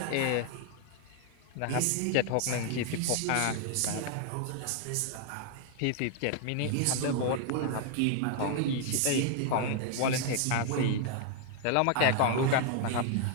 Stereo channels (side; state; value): both; different; correlation 0.00